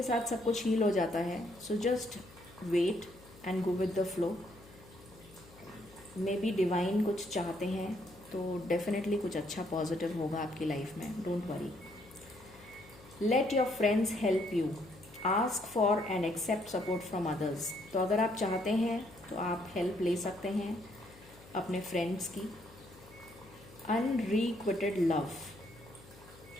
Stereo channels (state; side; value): noise; left; hum, 22 dB below the sound